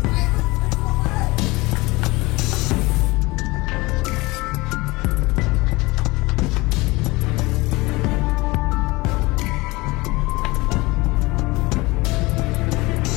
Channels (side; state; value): right; quieter; 22.5 dB